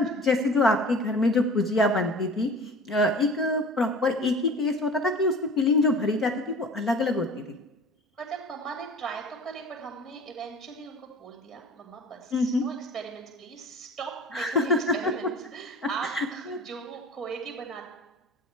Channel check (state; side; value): normal; both; correlation 0.41